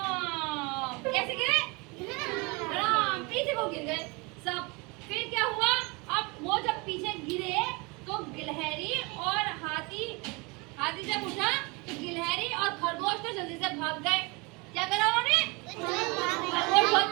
कैसे गिरे? पीछे को गिर गए सब। फिर क्या हुआ? अब वो जब पीछे गिरे तो गिलहरी और हाथी जब उठा तो गिलहरी और खरगोश तो जल्दी से भाग गए। क्या करा उन्होंने? खरगोश बहुत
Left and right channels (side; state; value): left; quieter; 27.7 dB